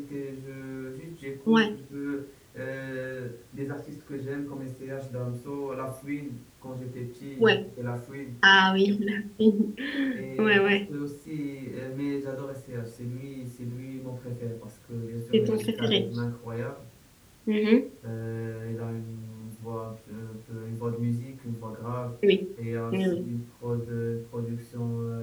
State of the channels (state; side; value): identical; both; correlation 1.00